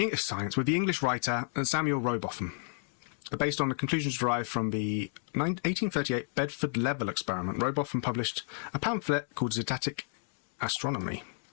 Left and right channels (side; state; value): right; silent; 57 dB below the other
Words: science with the English writer Samuel Rowbotham, based on the conclusions derived from the 1838 Bedford Level experiment. Rowbotham published a pamphlet called Zetetic Astronomy.